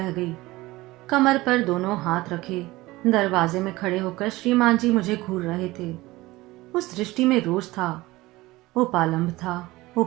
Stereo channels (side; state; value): left; quieter; 19.4 dB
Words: गई। कमर पर दोनों हाथ रखे दरवाजे में खड़े होकर श्रीमान जी मुझे घूर रहे थे। उस दृष्टि में रोष था, उपालंब था,